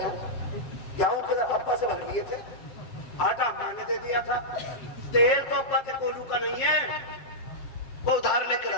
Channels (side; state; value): right; late; 7.5 ms